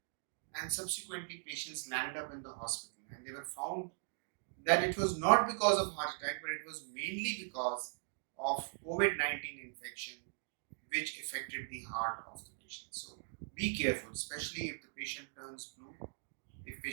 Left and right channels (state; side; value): silent; left; digital silence